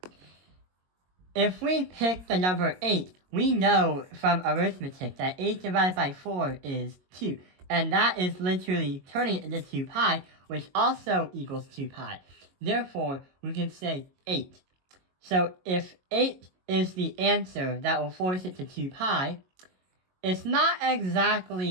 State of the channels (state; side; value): late; left; 22 ms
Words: If we pick the number 8, we know from arithmetic that 8 divided by 4 is 2. And that is literally turning it into 2 pi, which also equals 2 pi. Therefore, we can say 8. So if 8 is the answer that will force it to 2 pi, it's not